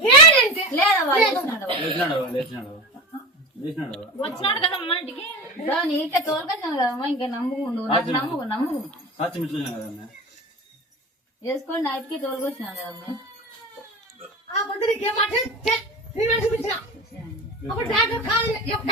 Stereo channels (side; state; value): both; normal; correlation 0.26